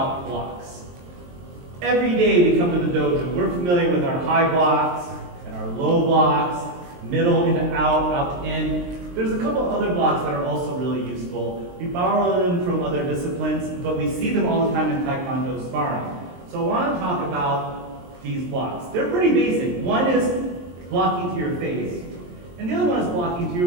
blocks. Every day we come to the dojo, we're familiar with our high blocks and our low blocks, middle into out, out in. There's a couple other blocks that are also really useful. We borrow them from other disciplines, but we see them all the time in Taekwondo sparring. So I want to talk about these blocks. They're pretty basic. One is blocking to your face, and the other one is blocking to your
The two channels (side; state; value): left; late; 23 ms